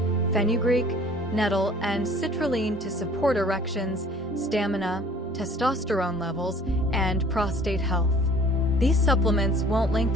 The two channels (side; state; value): both; normal; correlation 0.52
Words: fenugreek, nettle, and citrulline to support erections, stamina, testosterone levels, and prostate health. These supplements won't